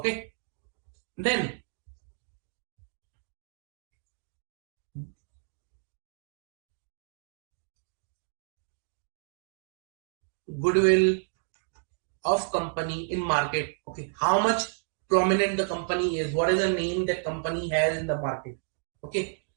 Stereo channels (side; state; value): left; silent; digital silence